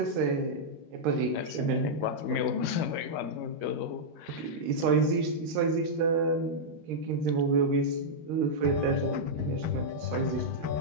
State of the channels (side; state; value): left; late; 13 ms